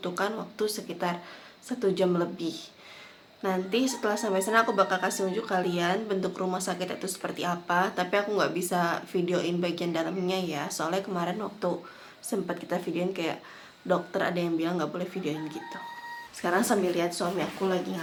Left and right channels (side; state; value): both; identical; correlation 1.00